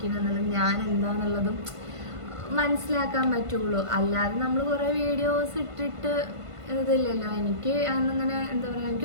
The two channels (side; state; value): left; late; 1.5 ms